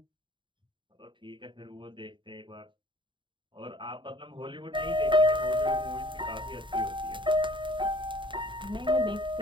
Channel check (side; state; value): left; late; 0.23 ms